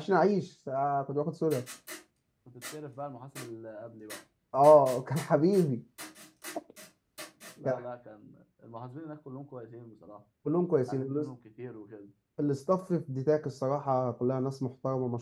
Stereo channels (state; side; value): identical; both; correlation 1.00